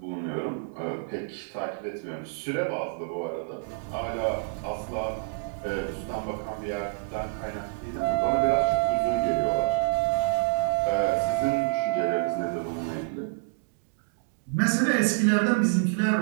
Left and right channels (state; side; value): silent; left; digital silence